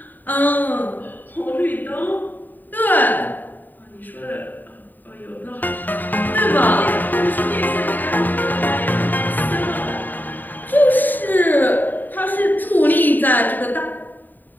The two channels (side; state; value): right; late; 0.088 ms